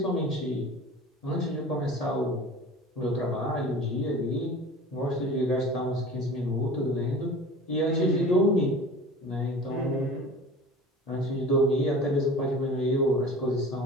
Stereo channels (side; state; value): both; normal; correlation 0.39